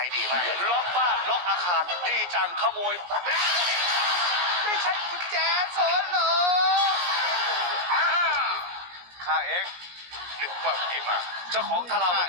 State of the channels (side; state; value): left; late; 17 ms